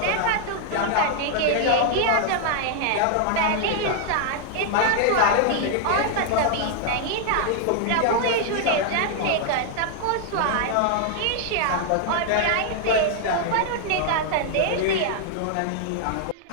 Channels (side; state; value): both; different; correlation 0.00